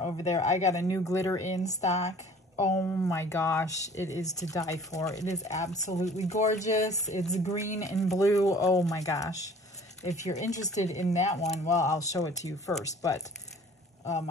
over there. I got a new glitter in stock. Oh my gosh, it is to die for. It is absolutely gorgeous. It's green and blue. Oh my gosh. If you're interested in that one, well, I'll show it to you first, but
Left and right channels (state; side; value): normal; both; correlation 0.50